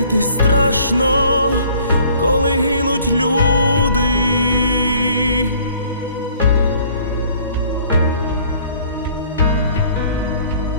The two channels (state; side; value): inverted; both; correlation -0.56